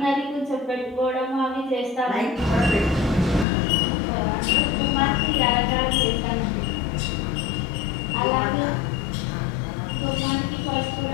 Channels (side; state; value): right; drops out; at 3.5 s